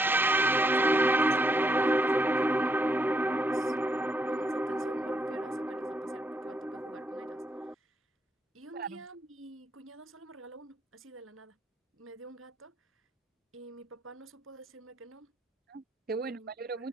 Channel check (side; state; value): both; normal; correlation 0.76